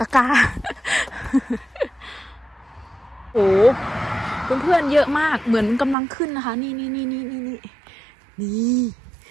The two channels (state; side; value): drops out; left; at 6.0 s